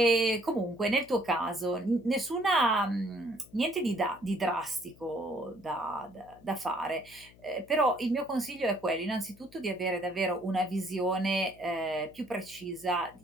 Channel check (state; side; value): noise; left; hum, 24 dB below the sound